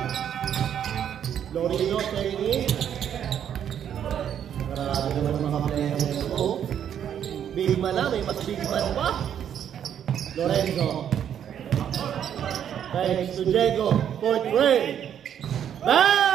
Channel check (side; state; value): left; quieter; 9.3 dB